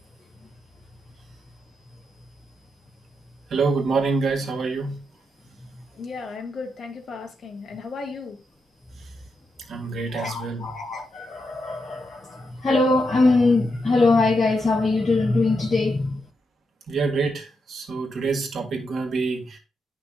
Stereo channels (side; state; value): both; normal; correlation 0.84